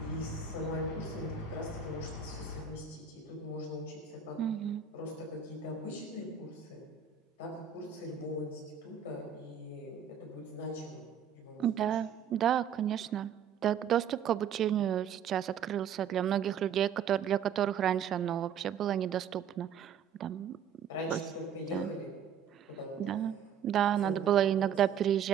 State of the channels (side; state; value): left; quieter; 7.7 dB